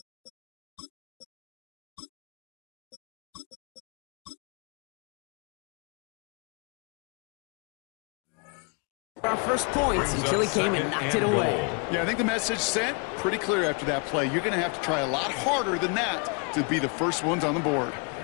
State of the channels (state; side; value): quieter; right; 35.4 dB